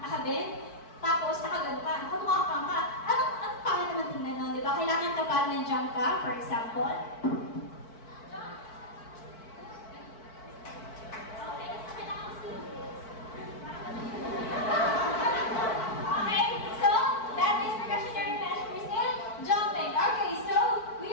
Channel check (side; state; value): right; late; 4.5 ms